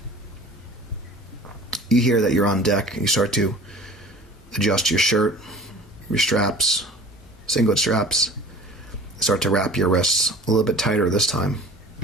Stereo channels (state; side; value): normal; both; correlation 0.44